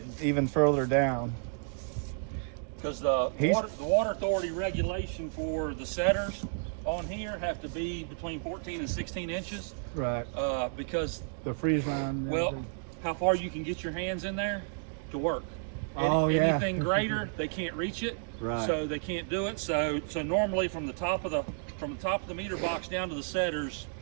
even further down. Because the He's- water authority regulation for the setters on here have to be between 14 and 16 inches. Right. Because The freeze line. and well, everything. how far you can get your hands in there to work. Oh, yeah. Anything greater, they can't reach it. Right. So they can't do it. So normally from the top of the meter box down to the setters,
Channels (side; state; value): left; silent; digital silence